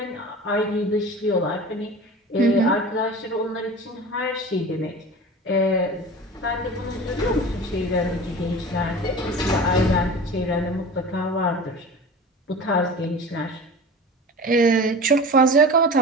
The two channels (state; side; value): normal; both; correlation 0.36